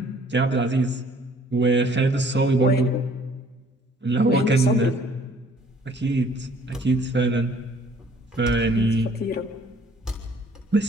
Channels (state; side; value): normal; both; correlation 0.57